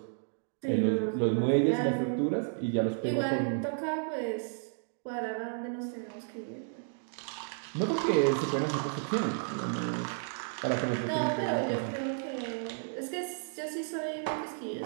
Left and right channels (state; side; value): silent; left; digital silence